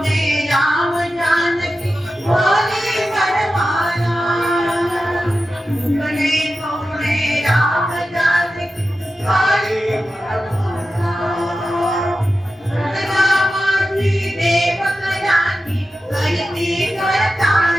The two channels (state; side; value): normal; both; correlation 0.92